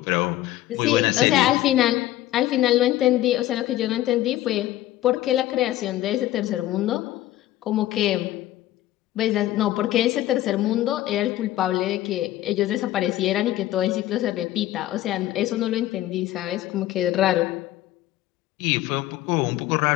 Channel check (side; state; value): right; quieter; 14.7 dB